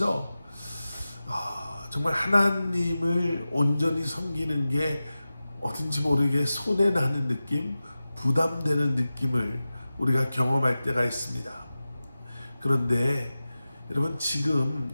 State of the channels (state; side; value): inverted; both; correlation -0.95